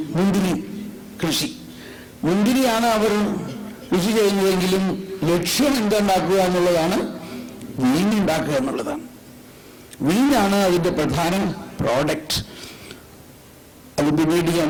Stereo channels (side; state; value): both; identical; correlation 1.00